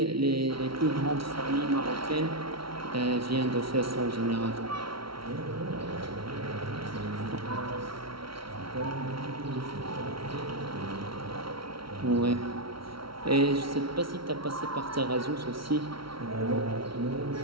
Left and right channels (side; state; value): left; late; 0.74 ms